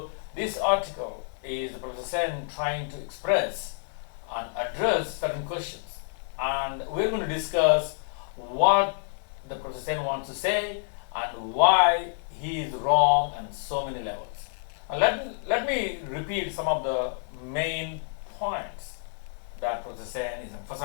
this article is Professor Sen trying to express and address certain questions, and we're going to discuss what the Professor Sen wants to say and why he is wrong on so many levels. And let me repeat some of the main points that Professor Sen is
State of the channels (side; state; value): right; silent; 58 dB below the other